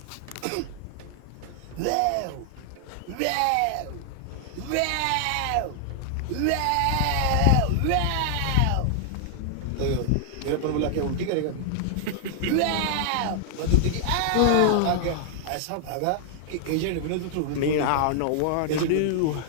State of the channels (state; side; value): different; both; correlation 0.00